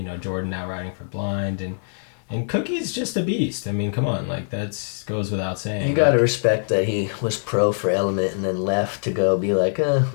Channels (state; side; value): silent; right; digital silence